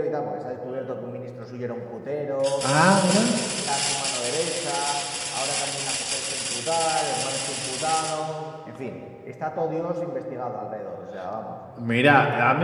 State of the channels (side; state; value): both; identical; correlation 1.00